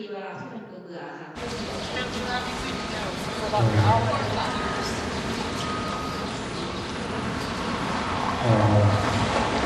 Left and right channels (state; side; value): identical; both; correlation 1.00